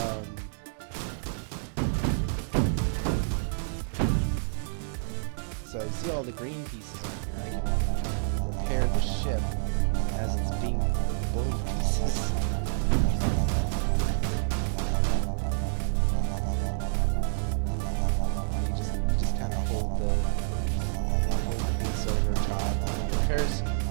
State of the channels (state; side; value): silent; left; digital silence